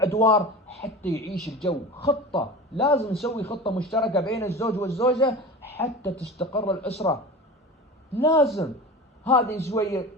أدوار حتى يعيش الجو. خطة، لازم نسوي خطة مشتركة بين الزوج والزوجة حتى تستقر الأسرة. لازم هذه شوية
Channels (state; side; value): normal; both; correlation 0.32